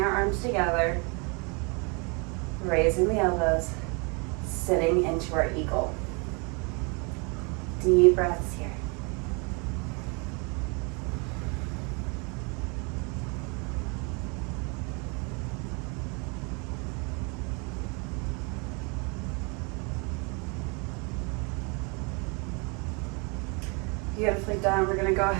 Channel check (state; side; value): quieter; left; 32.3 dB